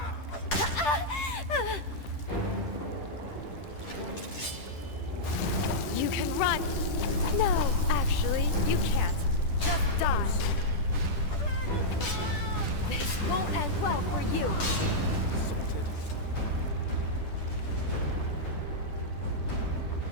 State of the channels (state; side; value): late; right; 10 ms